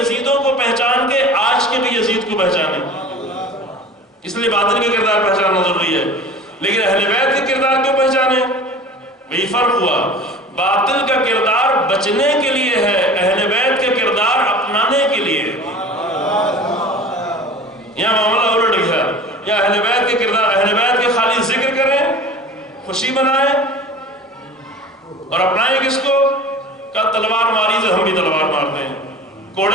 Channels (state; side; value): normal; both; correlation 0.40